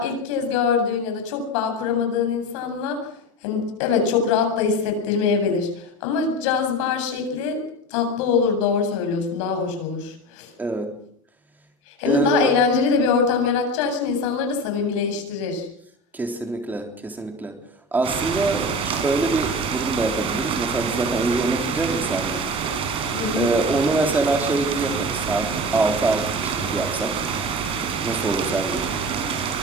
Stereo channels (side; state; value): both; normal; correlation 0.28